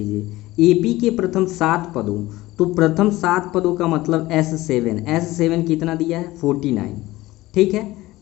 एपी के प्रथम 7 पदों, तो प्रथम 7 पदों का मतलब S7 कितना दिया है 49। ठीक है,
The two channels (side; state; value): right; quieter; 18.1 dB